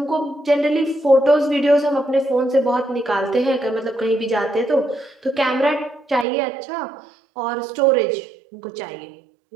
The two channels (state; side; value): drops out; left; at 6.2 s